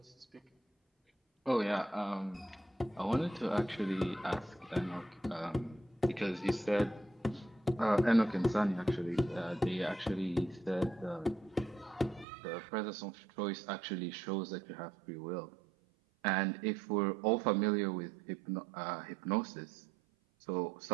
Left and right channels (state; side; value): drops out; left; at 12.2 s